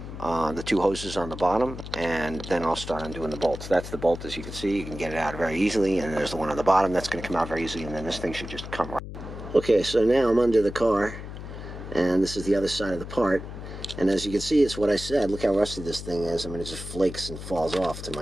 the 2 hoses on the bottom, and then I'll start undoing the bolts. That's the bolt, as you can see. You can get it out very easily, and there's the one on the bottom that's going to come out very easily, and then this thing should just come right. Okay, so now I'm under the car, and this is the other side of the part, and as you can see, it's what I said. Look how rusty this thing is. I mean, it just flakes and falls off to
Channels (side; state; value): left; noise; hum, 10 dB below the sound